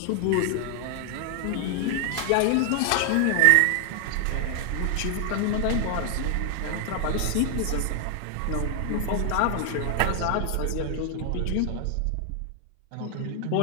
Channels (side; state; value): both; different; correlation 0.00